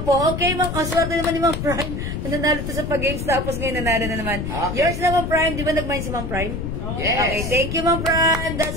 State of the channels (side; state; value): left; noise; rumble, 4 dB below the sound